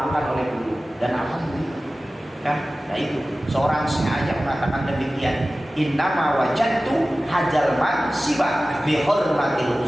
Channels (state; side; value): normal; both; correlation 0.96